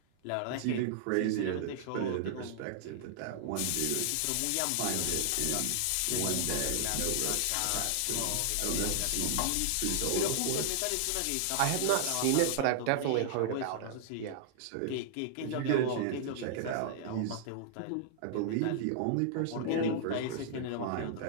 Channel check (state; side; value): different; both; correlation -0.01